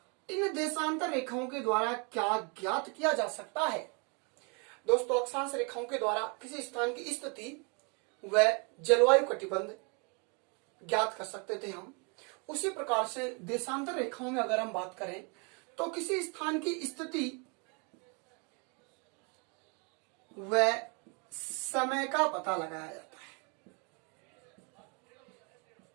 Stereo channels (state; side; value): quieter; left; 33.7 dB